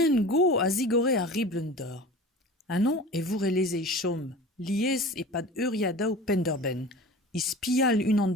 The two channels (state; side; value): normal; both; correlation 0.37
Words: go a zigore a riblen d'or. Anon e voure lezei chom, liez e pad uriadaou penderben, I spial unan